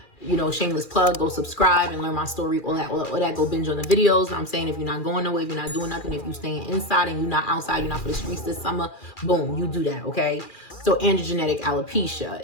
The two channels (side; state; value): right; late; 2.4 ms